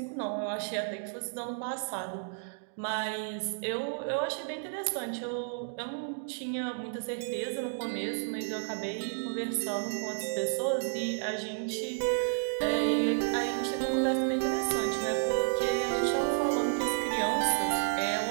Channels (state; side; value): silent; left; digital silence